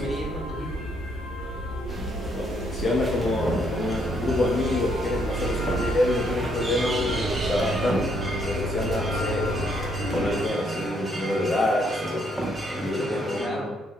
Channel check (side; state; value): both; normal; correlation 0.71